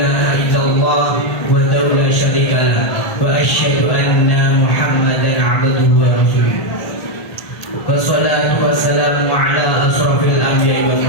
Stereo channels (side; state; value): right; late; 1.8 ms